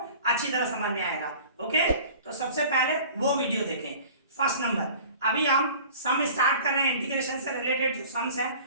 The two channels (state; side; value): inverted; both; correlation -0.44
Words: अच्छी तरह समझ में आएगा। ओके, तो सबसे पहले वो वीडियो देखें। फर्स्ट नंबर, अभी हम सम स्टार्ट कर रहे हैं, इंटीग्रेशन से रिलेटेड जो सम्स है